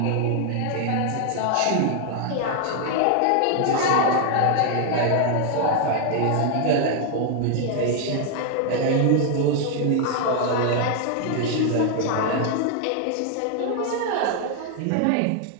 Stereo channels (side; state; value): both; different; correlation 0.00